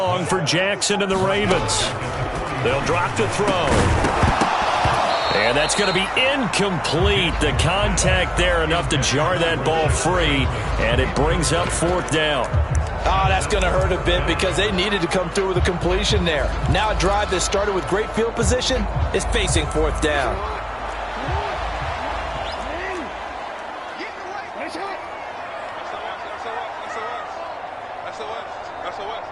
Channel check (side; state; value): both; identical; correlation 1.00